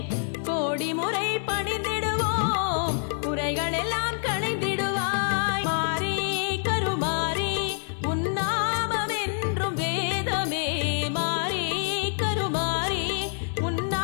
கோடி முறை பணிந்திடுவோம் குறைகள் எல்லாம் களைந்திடுவாய். மாரி கருமாரி உன்னாமம் என்றும் வேதமே மாரி கருமாரி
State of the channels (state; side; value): silent; right; 60 dB below the other